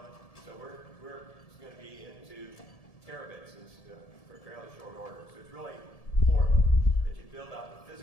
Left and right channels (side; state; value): right; late; 1.7 ms